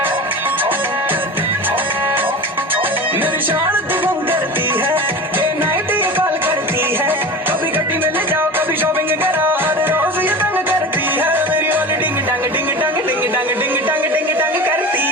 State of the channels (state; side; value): normal; both; correlation 0.31